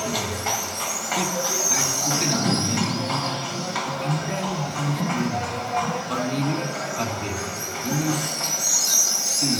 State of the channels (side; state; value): both; identical; correlation 1.00